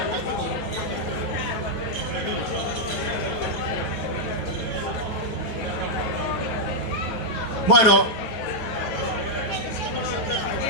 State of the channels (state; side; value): late; right; 9.2 ms